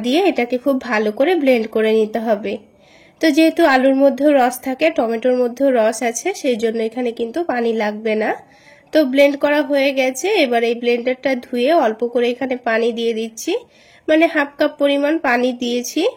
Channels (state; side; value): identical; both; correlation 1.00